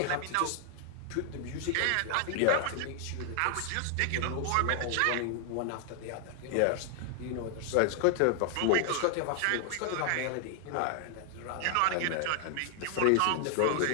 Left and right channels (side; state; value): both; different; correlation 0.00